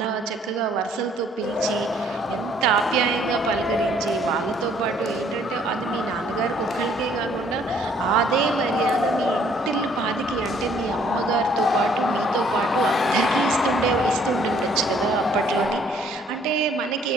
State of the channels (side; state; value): both; normal; correlation 0.62